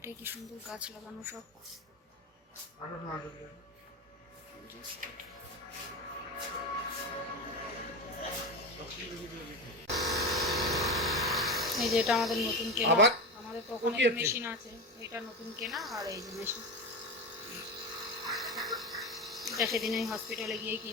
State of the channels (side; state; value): both; normal; correlation 0.21